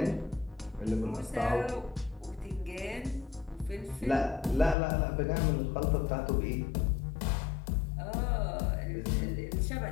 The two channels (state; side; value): drops out; right; at 4.8 s